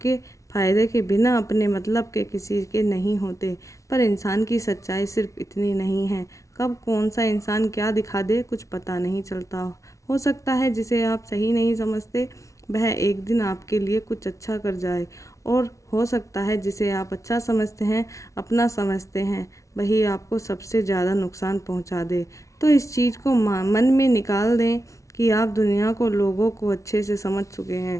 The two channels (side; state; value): right; late; 0.15 ms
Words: फ़ायदे के, बिना अपने मतलब के किसी के नहीं होते। पर इंसान की सच्चाई सिर्फ इतनी नहीं है। कब कौन सा इंसान क्या दिखा दे कुछ पता नहीं चलता। हो सकता है जिसे आप सही नहीं समझते वह एक दिन आपके लिए कुछ अच्छा कर जाए, और हो सकता है जिसे आप अच्छा समझते हैं, अपना समझते हैं, वही आपको सबसे ज़्यादा नुकसान पहुंचा दे। तो इस चीज़ को मन में निकाल दें कि आप दुनिया को, लोगों को अच्छे से समझ चुके